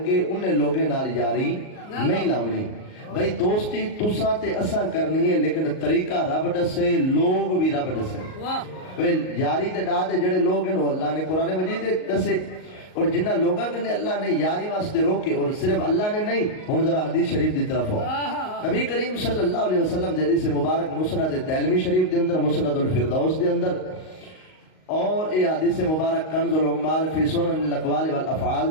انہیں لوگیں نال یاری نہیں لاونی۔ بھئی دوستی تساں تے اساں کرنی ہے لیکن طریقہ رب دسے، لوگ بھی رب دسے۔ یاری تے ڈا دے جڑے لوگ ہیں وہ اللہ نے قرآن مجید دسے، اور جنہ لوگاں نے اللہ نے یاری واسطے روکے، اور صرف اللہ نے نہیں۔ ہن ذرا حدیث شریف دی طرف ہو، نبی کریم صلی اللہ علیہ وسلم دی حدیث مبارک مسند دارمی شریف دے اندر، مسند الفردوس دے اندر، اور یہ حدیث مبارک کنز العمال فی سنن الاقوال والافعال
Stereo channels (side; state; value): right; late; 38 ms